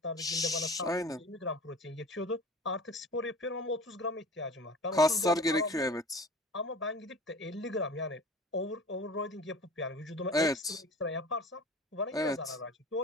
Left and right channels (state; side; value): normal; both; correlation 0.39